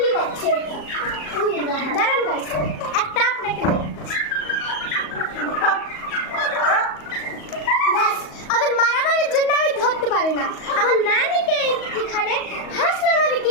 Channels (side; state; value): right; late; 38 ms